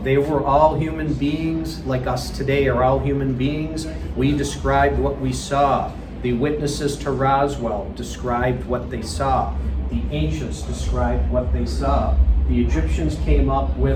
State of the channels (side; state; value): both; identical; correlation 1.00